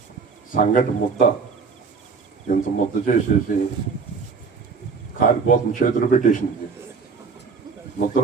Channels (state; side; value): quieter; left; 5.1 dB